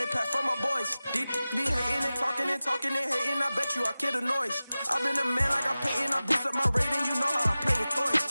pack for my boys. Be hating and talking and hating. I bet you I kill the noise. I've been a man like I'm Peyton. I boost up my rating. You know how I play with toys.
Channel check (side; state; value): both; inverted; correlation -0.96